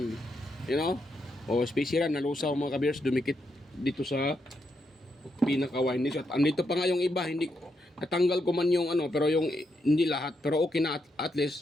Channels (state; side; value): normal; both; correlation 0.81